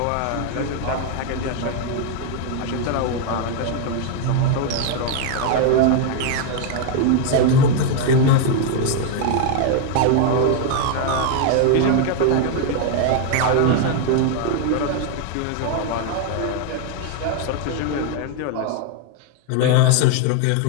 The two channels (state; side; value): different; both; correlation 0.00